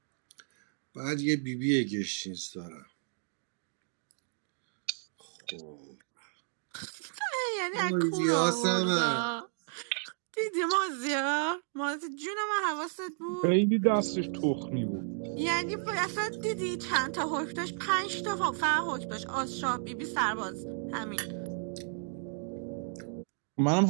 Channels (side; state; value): left; silent; 56 dB below the other